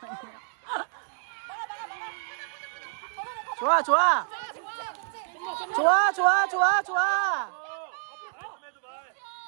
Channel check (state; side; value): silent; left; digital silence